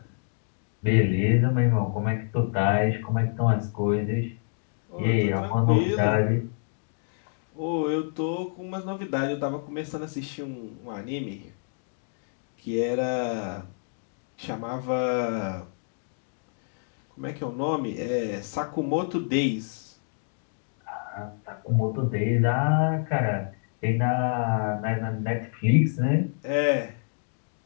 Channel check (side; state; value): right; silent; digital silence